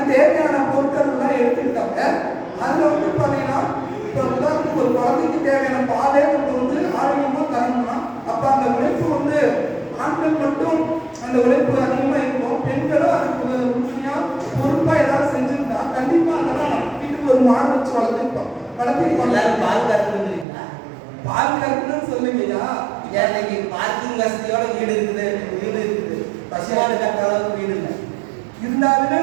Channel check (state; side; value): drops out; left; at 20.5 s